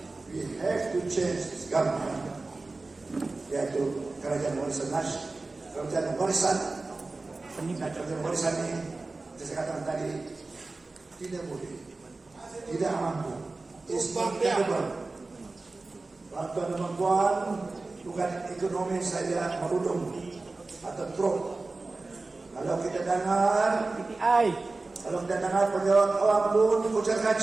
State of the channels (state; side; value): quieter; left; 3.4 dB